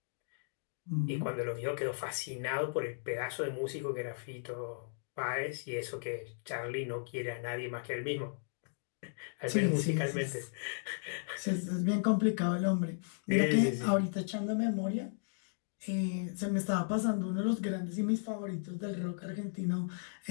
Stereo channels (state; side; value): silent; right; digital silence